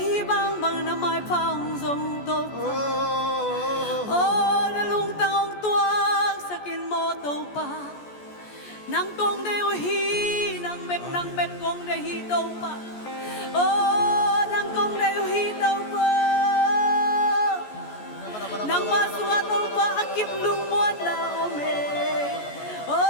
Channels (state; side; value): late; right; 14 ms